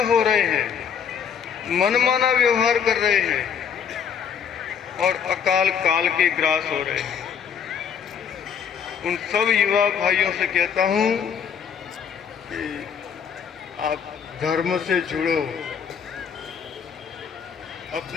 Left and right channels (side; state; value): right; quieter; 7.5 dB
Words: हो रहे हैं, मनमाना व्यवहार कर रहे हैं और अकाल काल के ग्रास हो रहे हैं। उन सब युवा भाइयों से कहता हूं कि आप धर्म से जुड़ो,